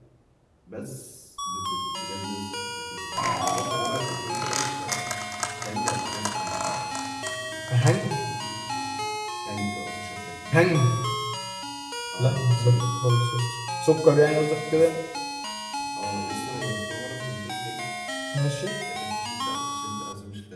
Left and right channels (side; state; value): both; identical; correlation 1.00